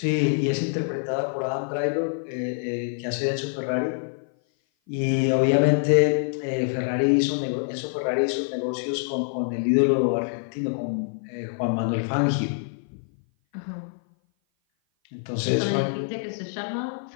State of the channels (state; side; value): silent; right; 56 dB below the other